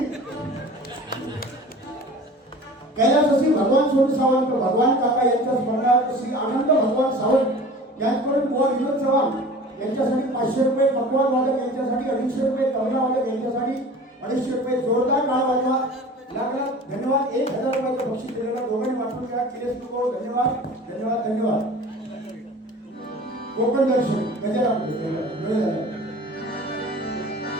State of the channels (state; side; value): normal; both; correlation 0.41